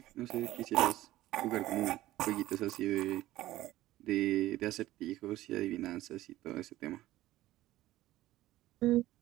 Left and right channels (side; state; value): left; quieter; 15.8 dB